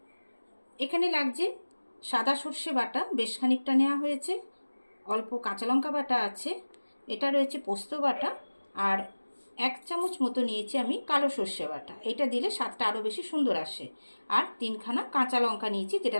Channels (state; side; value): inverted; both; correlation -1.00